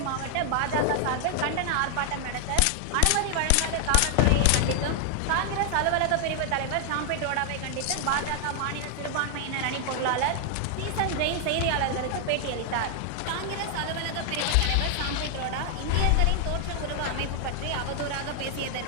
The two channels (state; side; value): different; both; correlation 0.00